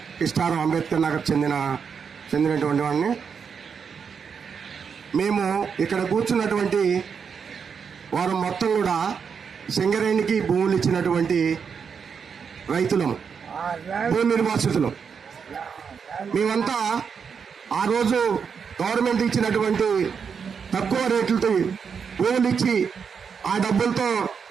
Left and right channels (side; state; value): left; quieter; 6.4 dB